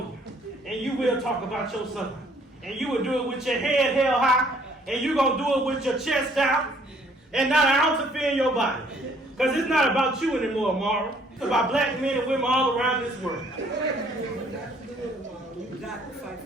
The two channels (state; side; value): normal; both; correlation 0.62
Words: and you will talk about your son. And you will do it with your head held high. And you're going to do it with your chest out and not an ounce of fear in your body. Because it's not about you anymore, Amara. It's about black men and women all around this world. You got to fight.